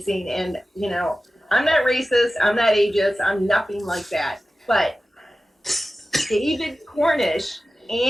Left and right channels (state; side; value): normal; both; correlation 0.95